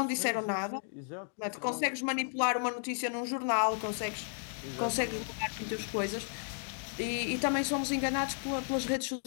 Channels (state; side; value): silent; right; digital silence